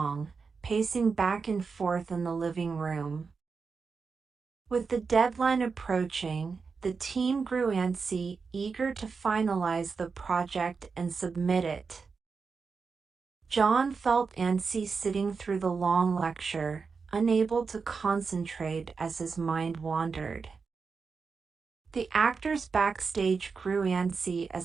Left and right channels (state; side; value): quieter; left; 5.1 dB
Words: pacing back and forth in the living room. With the deadline approaching, the team grew antsy, eager to finalize the project and submit it. John felt antsy sitting through the long lecture, unable to concentrate as his mind wandered. The actors backstage grew antsy